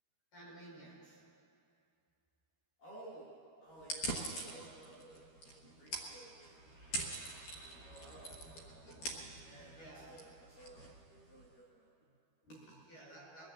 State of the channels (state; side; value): late; right; 13 ms